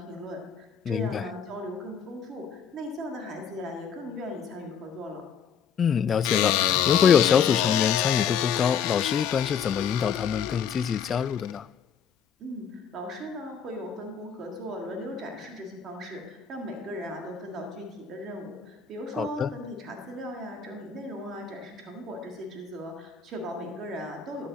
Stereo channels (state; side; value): quieter; right; 7.3 dB